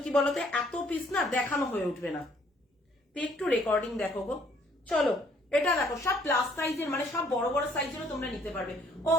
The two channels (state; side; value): normal; both; correlation 0.63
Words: কি বলতো, এত পিস না দেখানো হয়ে উঠবে না। একটু রেকর্ডিং দেখো গো। চলো এটা দেখো, সব প্লাস সাইজের, মানে সব বড় বড় সাইজেরও তোমরা নিতে পারবে। ও